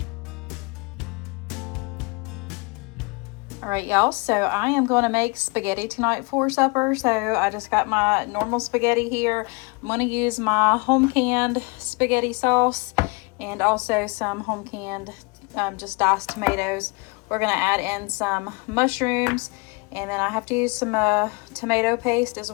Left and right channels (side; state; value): right; quieter; 29.5 dB